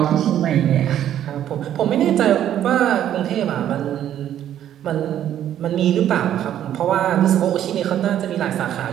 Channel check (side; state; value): left; quieter; 11.0 dB